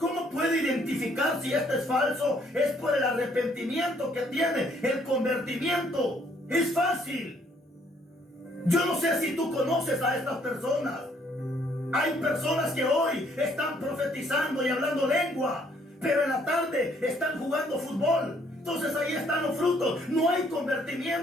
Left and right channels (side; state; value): both; normal; correlation 0.66